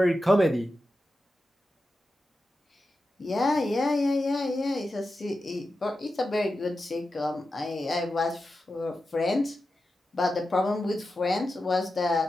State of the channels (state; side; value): normal; both; correlation 0.91